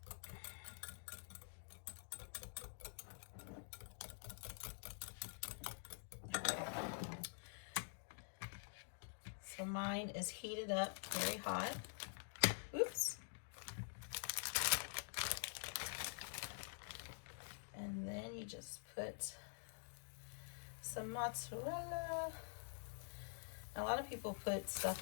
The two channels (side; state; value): right; silent; digital silence